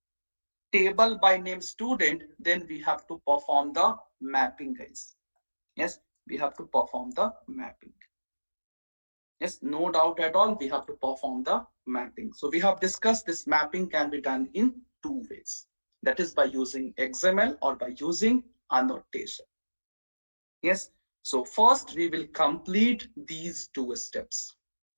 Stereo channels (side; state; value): both; inverted; correlation -1.00